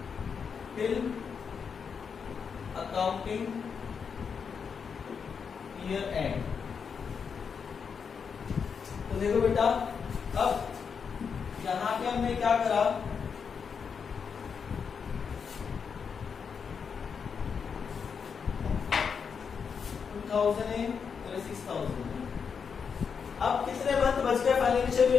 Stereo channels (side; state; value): right; quieter; 6.3 dB